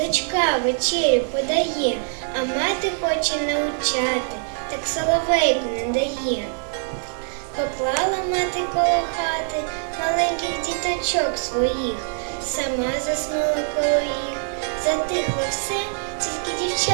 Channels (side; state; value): left; silent; 63 dB below the other